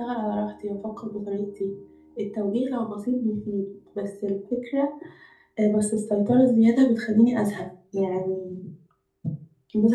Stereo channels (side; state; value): both; identical; correlation 1.00